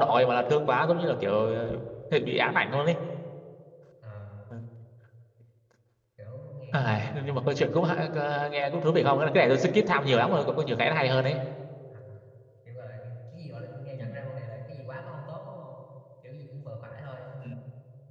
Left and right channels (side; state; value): both; identical; correlation 1.00